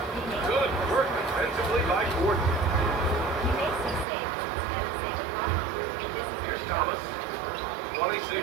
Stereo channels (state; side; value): drops out; left; at 4.0 s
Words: Good work defensively by Gordon. Here's Thomas.